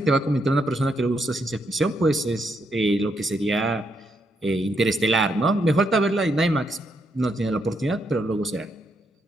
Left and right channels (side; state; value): both; normal; correlation 0.78